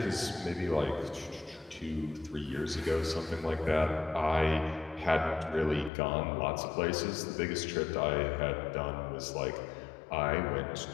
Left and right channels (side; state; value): right; drops out; at 5.9 s